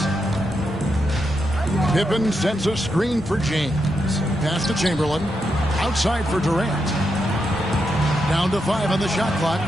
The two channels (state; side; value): normal; both; correlation 0.84